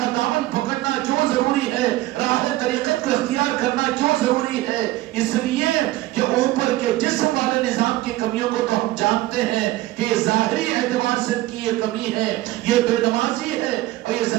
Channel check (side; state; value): left; quieter; 16.9 dB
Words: دامن پکڑنا کیوں ضروری ہے، راہ طریقت کو اختیار کرنا کیوں ضروری ہے؟ اس لیے کہ اوپر کے جسم والے نظام کی کمیوں کو تو ہم جانتے ہیں کہ ظاہری اعتبار سے کی یہ کمی ہے، یہ بے نمازی ہے اور یہ